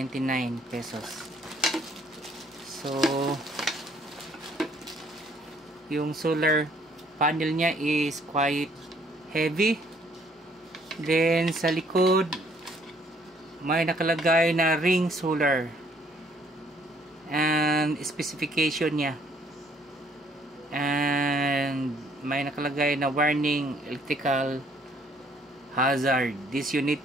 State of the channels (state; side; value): normal; both; correlation 0.63